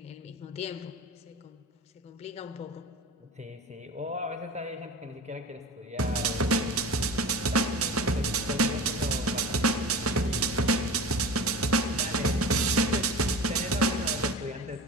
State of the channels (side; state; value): both; normal; correlation 0.34